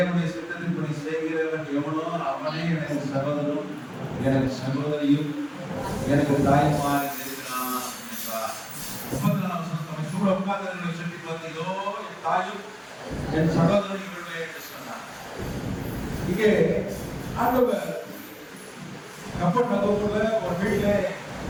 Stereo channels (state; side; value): identical; both; correlation 1.00